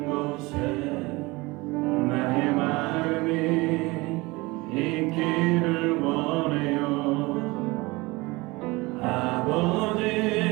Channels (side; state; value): left; quieter; 23.2 dB